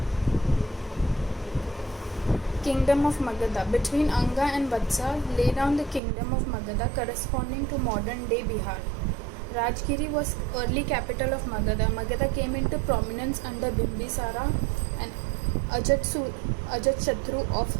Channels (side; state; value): left; drops out; at 6.0 s